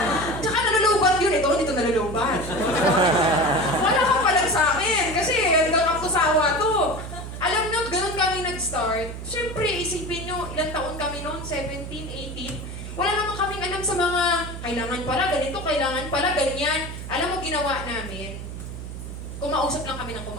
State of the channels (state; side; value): noise; right; hum, 9 dB below the sound